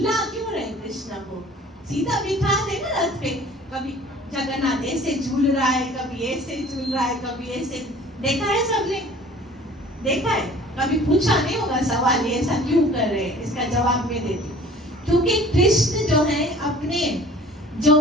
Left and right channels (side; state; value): both; normal; correlation 0.48